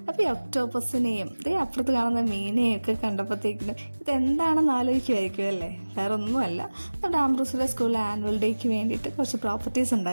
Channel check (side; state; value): both; inverted; correlation -1.00